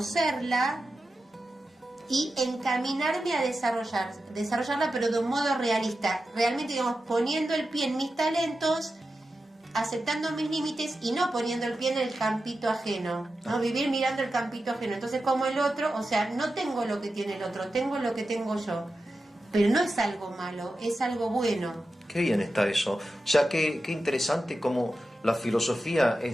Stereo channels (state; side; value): normal; both; correlation 0.91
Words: y encaminarme a desarrollarla, pero de un modo realista, realmente, digamos, poniendo el pie en mis talentos, aceptando mis límites y no poniendo el pie en el campito ajeno, ¿no? Vivir mirando el campito ajeno. Entonces, como el otro, o sea, no tengo lo que tiene el otro, tengo lo que tengo yo. Pero no es algo malo, es algo bueno. Qué bien está eso. O sea, qué interesante como la filosofía